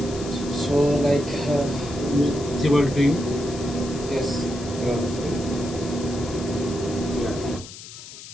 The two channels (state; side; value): noise; left; hiss, 14 dB below the sound